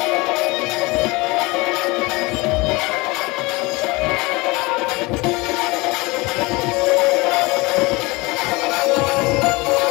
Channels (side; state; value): right; quieter; 24.0 dB